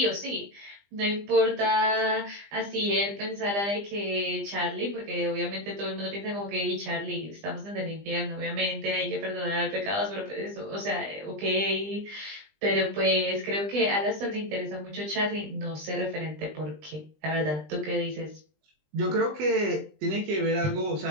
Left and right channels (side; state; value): left; late; 20 ms